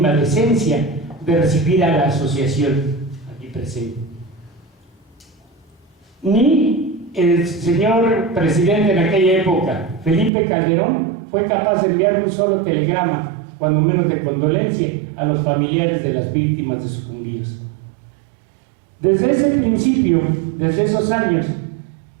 decencia de recibir a la asociación aquí presente. Ni el señor presidente en aquella época, Felipe Calderón, fue capaz de enviar un solo telegrama, cuando menos de condolencia, a los familiares de las víctimas de sucumbidos. Desde ese principio, desde esos años,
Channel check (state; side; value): drops out; left; at 10.3 s